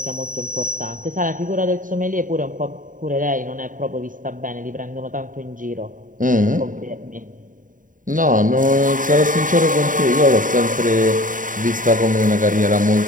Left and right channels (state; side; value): late; left; 0.39 ms